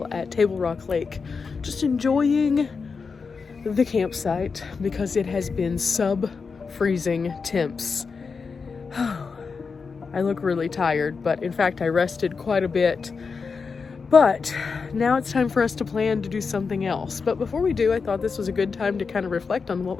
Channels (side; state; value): right; quieter; 5.1 dB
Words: at Table Rock Lake, just enjoying the campsite because it has been sub-freezing temps. I look really tired, but in fact I rested quite a bit. But now it's time for us to plan to do something else. But before we do, I thought this was a good time to kind of reflect on what